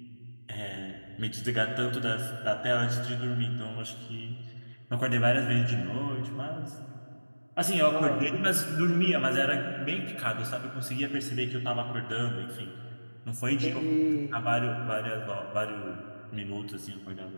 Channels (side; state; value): both; inverted; correlation -1.00